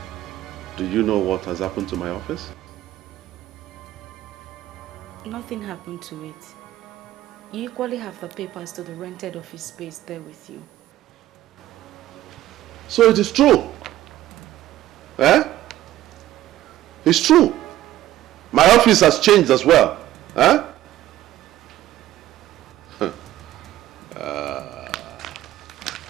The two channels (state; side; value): quieter; left; 14.2 dB